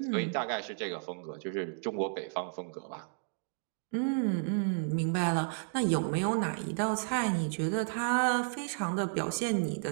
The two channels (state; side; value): silent; left; digital silence